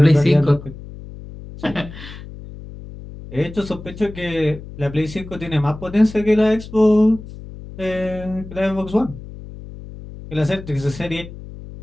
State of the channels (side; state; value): left; noise; hum, 14 dB below the sound